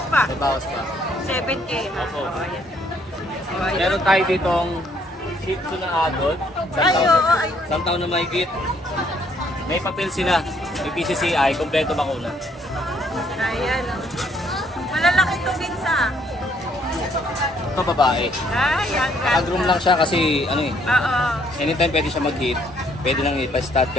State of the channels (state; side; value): normal; both; correlation 0.67